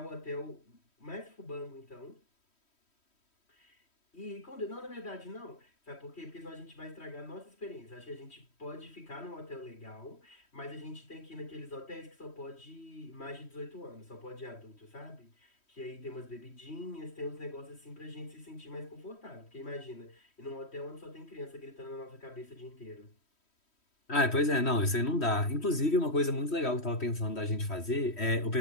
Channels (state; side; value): late; right; 3.1 ms